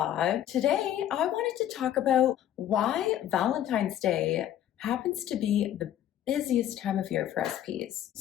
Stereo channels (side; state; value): right; quieter; 11.4 dB